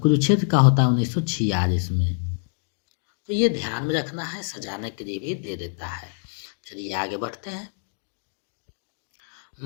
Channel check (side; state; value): right; silent; 60 dB below the other